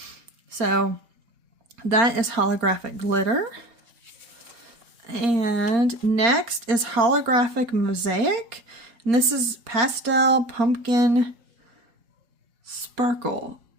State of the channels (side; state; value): left; late; 4.3 ms